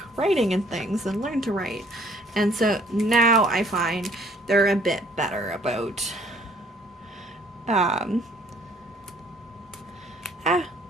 writing and things and learn to write. And so now I find they're a bit better about,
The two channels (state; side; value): normal; both; correlation 0.60